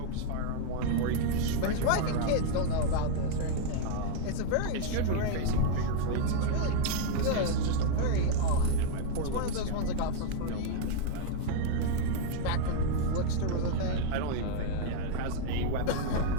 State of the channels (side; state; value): both; different; correlation 0.00